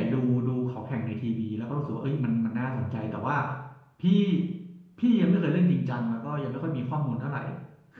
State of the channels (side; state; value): both; identical; correlation 1.00